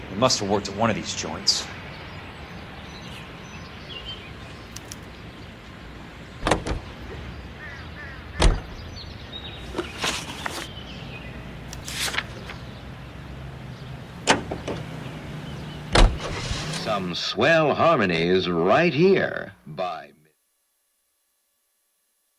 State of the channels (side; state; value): both; identical; correlation 1.00